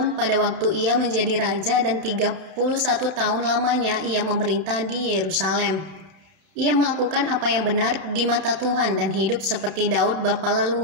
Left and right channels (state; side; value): late; left; 31 ms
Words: pada waktu ia menjadi raja dan 31 tahun lamanya ia memerintah di Yerusalem. Ia melakukan apa yang benar di mata Tuhan dan hidup seperti Daud bapa